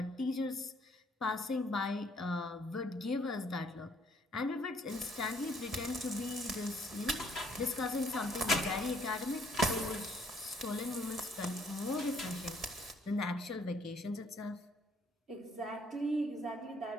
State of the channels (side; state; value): both; normal; correlation 0.65